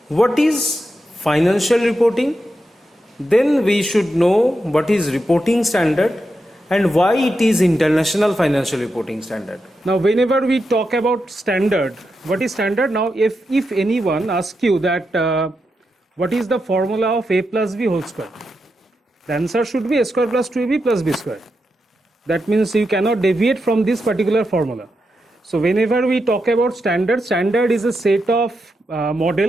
what is financial reporting, then we should know what is reporting standard and why it is International Financial Reporting Standard. Now whenever we talk about standard, what is standard? Now if anyone asks you that what is the formula of a plus b whole square, the answer should be a square plus 2ab plus b square. That means you cannot deviate from this particular formula. So whenever we talk about standard, standard is a set of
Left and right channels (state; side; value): normal; both; correlation 0.86